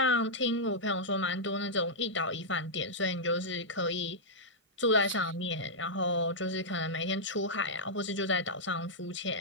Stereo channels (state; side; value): normal; both; correlation -0.08